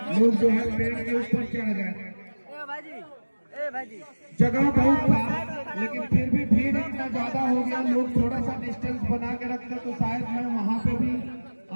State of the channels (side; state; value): both; inverted; correlation -1.00